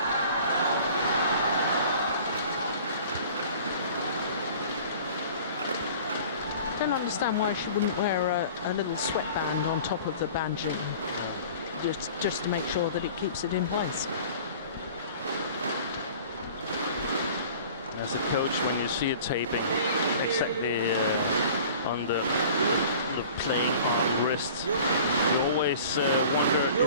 I don't understand why she wouldn't wear a little sweatband on top of the banjing, just to make sure that it keeps it in place. As a coach, when you see it taping exactly on the playing arm wrist, you always wonder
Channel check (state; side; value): inverted; both; correlation -0.46